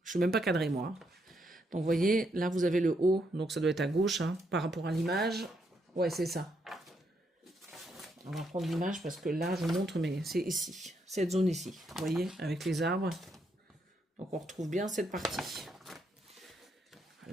suis même pas cadré, moi. Donc, vous voyez, là, vous avez le haut. Donc, ça doit être à gauche, par rapport à l'image. Ouais, c'est ça. On va prendre l'image parce que là, je vous montre, mais c'est ici. Cette zone ici. Vous voyez, avec les arbres. Donc, on retrouve bien cette partie.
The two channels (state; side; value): normal; both; correlation 0.77